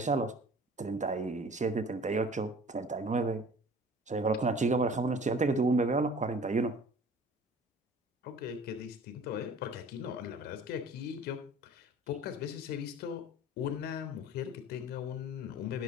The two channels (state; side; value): normal; both; correlation 0.46